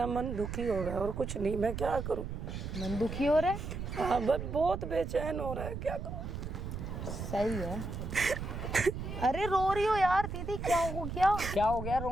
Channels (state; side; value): noise; right; rumble, 6 dB below the sound